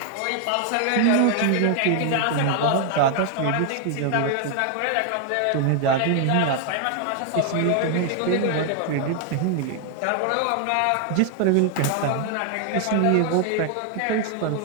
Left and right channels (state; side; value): different; both; correlation 0.00